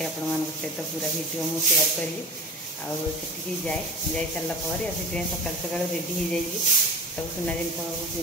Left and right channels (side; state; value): both; normal; correlation 0.31